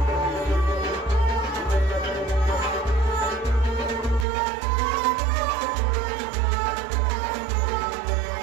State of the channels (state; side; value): drops out; left; at 4.2 s